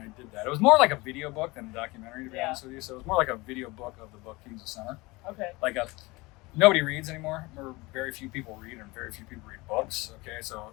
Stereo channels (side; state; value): right; quieter; 23.2 dB